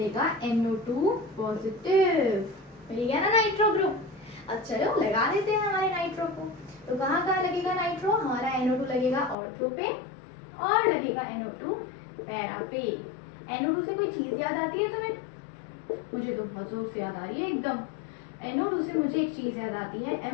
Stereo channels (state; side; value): drops out; right; at 9.3 s